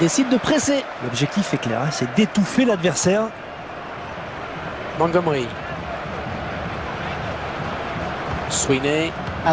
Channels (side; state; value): both; identical; correlation 1.00